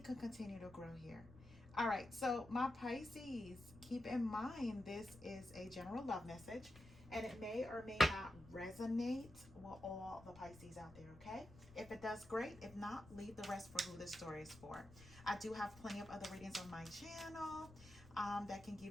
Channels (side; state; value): left; noise; rumble, 19 dB below the sound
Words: can continue to grow here. All right, so my Pisces, keep in mind this is a general love message and it may or may not resonate with all the Pisces out there, okay? If it does, great. If not, leave the rest for who this story is for. I do have plenty of other readings on my channel that can